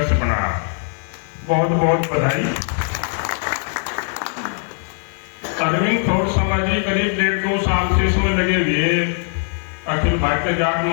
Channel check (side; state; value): right; silent; 61 dB below the other